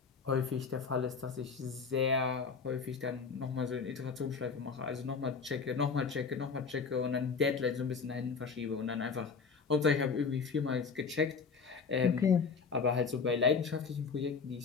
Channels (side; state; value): right; quieter; 5.3 dB